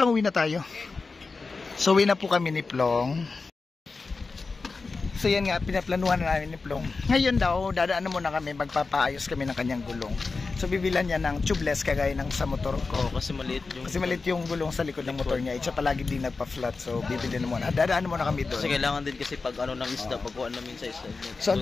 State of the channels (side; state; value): right; quieter; 4.1 dB